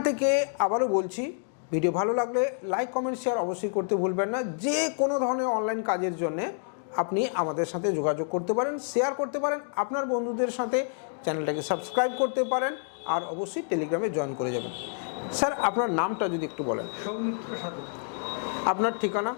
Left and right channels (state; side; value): silent; right; digital silence